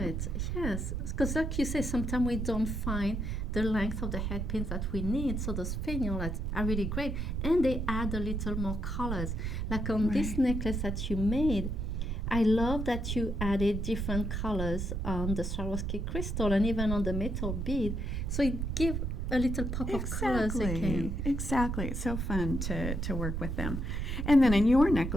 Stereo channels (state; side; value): noise; right; rumble, 2 dB below the sound